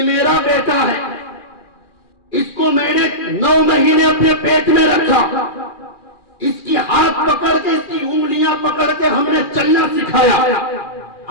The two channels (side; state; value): right; late; 2.4 ms